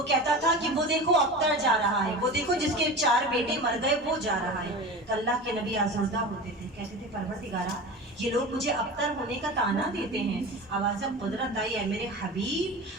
कहता था कि वो देखो अख्तर जा रहा है, वो देखो जिसके 4 बेटे मर गए वो जा रहा है। तो अल्लाह के नबी आज़ुर्दा होते थे, कहते थे परवरदिगारा ये लोग मुझे अख्तर होने का ताना देते हैं। आवाज़ कुदरत आई है, मेरे हबीब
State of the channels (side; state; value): both; normal; correlation 0.31